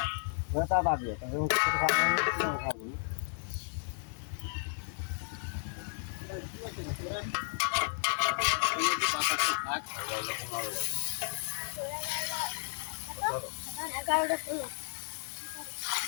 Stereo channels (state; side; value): silent; right; 55 dB below the other